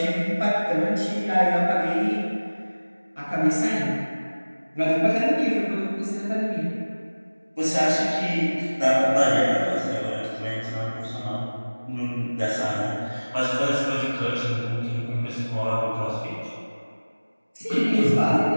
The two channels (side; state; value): both; inverted; correlation -1.00